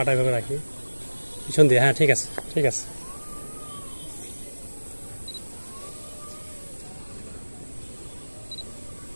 ভাবে রাখি, পিছন দিয়ে। হ্যাঁ ঠিক আছে। ঠিক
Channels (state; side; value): inverted; both; correlation -1.00